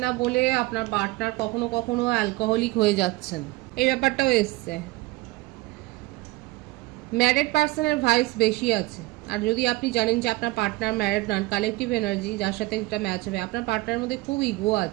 না বলে আপনার পার্টনার কখনো কখনো অ্যালকোহলিক হয়ে যাচ্ছেন, এই ব্যাপারটাও এসছে। ম্যারিড পার্সনের ভাইস বেশি আছে। আর যদি আপনি জানেন যে আপনার পার্টনার ম্যারিড নন, কালেকটিভ এনার্জি যার সাথে এটা ম্যাচ হবে, আপনার পার্টনারের মধ্যে খুব ইগো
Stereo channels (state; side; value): quieter; left; 20.7 dB